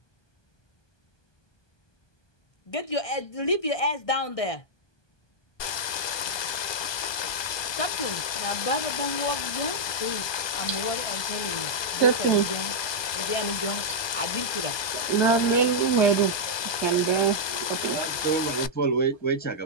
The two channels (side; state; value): right; late; 1.2 ms